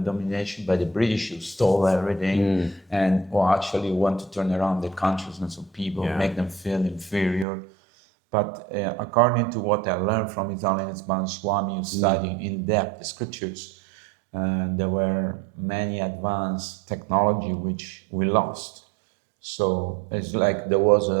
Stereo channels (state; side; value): drops out; left; at 7.5 s